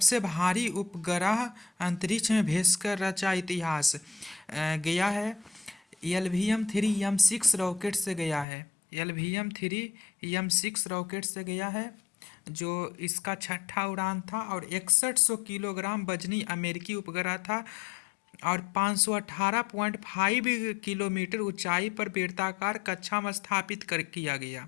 भारी उपग्रह अंतरिक्ष में भेजकर रचा इतिहास। गया है LVM-3 M6 रॉकेट से गया है। LVM-3 M6 रॉकेट से गया है जो इसका छठा उड़ान था और 6100 किलोग्राम वजनी अमेरिकी उपग्रह था और 518.5 किलोमीटर ऊंचाई पर बेलनाकार कक्षा में स्थापित कर किया गया।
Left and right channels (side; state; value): right; drops out; at 8.5 s